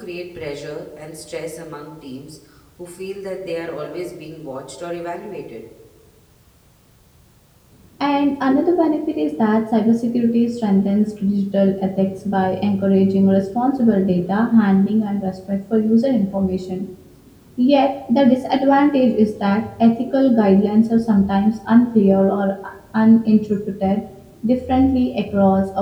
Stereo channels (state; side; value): identical; both; correlation 1.00